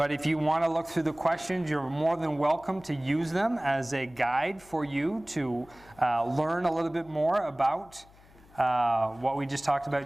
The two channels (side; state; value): left; noise; hum, 26 dB below the sound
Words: if you want to look through the questions, you're more than welcome to use them as a guide for you to learn a little bit more about what we just talked